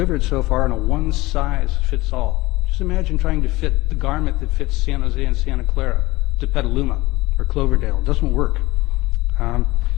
so far in a one-size-fits-all. Just imagine trying to fit the garment that fits San Jose and Santa Clara to Petaluma or Cloverdale. It doesn't work.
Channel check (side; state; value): right; quieter; 20.1 dB